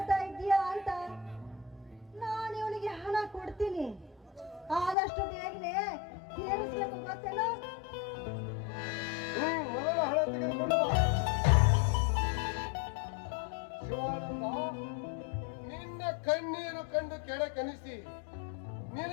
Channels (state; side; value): drops out; right; at 5.0 s